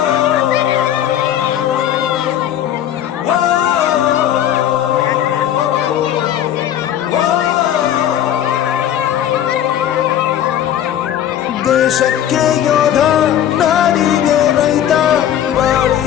ದೇಶಕ್ಕೆ ಯೋಧ, ನಾಡಿಗೆ ರೈತ,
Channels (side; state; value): right; quieter; 10.7 dB